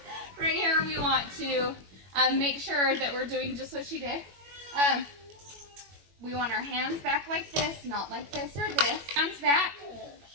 right here we want to make sure that we're doing just what she did. We want our hands back like this, not like this or this. Hands back,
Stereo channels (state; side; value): late; left; 21 ms